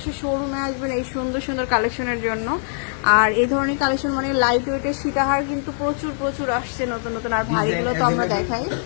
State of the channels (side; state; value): right; silent; 64 dB below the other